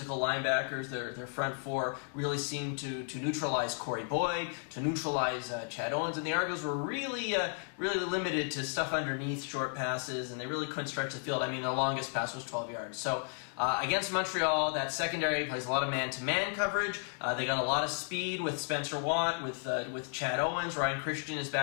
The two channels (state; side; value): silent; right; 55 dB below the other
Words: linebackers, their front four really seemed to neutralize Corey Boyd, to neutralize Chad Owens, and the Argos were really limited to stuff underneath, short passes, and they really couldn't stretch the field. I mean, the longest pass was 12 yards. So against Montreal, that secondary plays a lot of man-to-man coverage. They got a lot of speed with Spencer Watt, with Chad Owens. Ryan Christian is